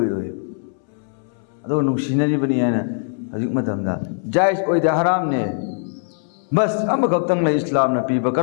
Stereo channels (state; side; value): silent; right; 65 dB below the other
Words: अदो नुंसिनरिबनि हायना हजिक मतमदा जायज ओइदे हरामने बस अमखक्तंग ले इस्लामना पीबा